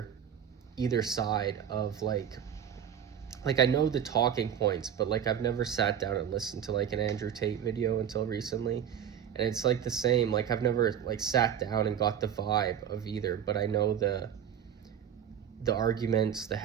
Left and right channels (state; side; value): quieter; left; 8.9 dB